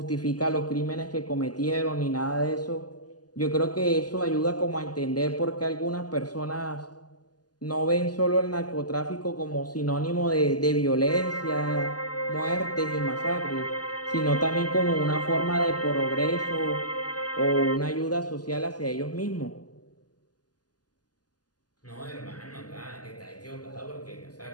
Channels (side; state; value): right; late; 0.69 ms